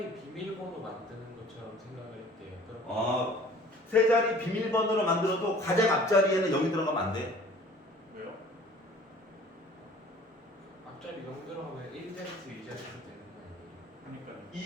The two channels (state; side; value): normal; both; correlation 0.49